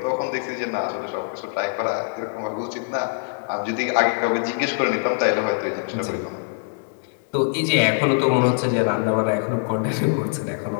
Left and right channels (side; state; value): right; silent; digital silence